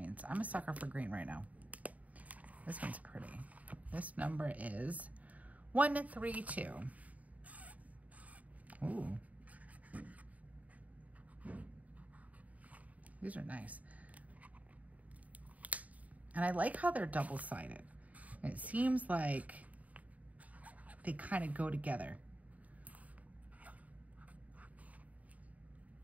I'm a sucker for green right now. This one's pretty. This number is 132. Ooh. These are nice. And I like how they're double-sided. It seems like they kind of go together.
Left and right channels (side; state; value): left; late; 0.071 ms